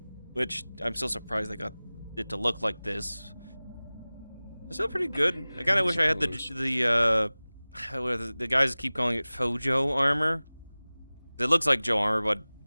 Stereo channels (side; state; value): both; inverted; correlation -0.99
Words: which I'm still surprised they got it to look like this, it's still pretty good. I kind of wish I had the guys keep calling it Fojo armor. It looks like Joe armor, but